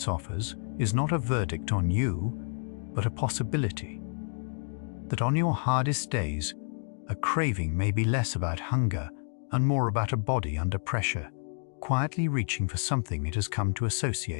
offers is not a verdict on you, but a possibility. That on your hardest days, a craving may be less about hunger and more about a body under pressure, quietly reaching for something it has come to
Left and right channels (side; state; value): right; silent; digital silence